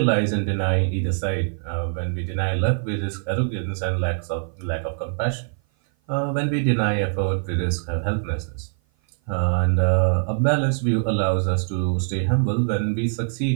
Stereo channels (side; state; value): left; silent; 56 dB below the other